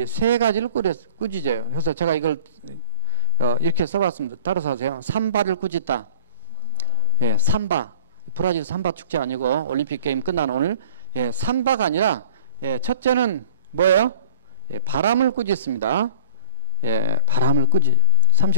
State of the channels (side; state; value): both; inverted; correlation -0.42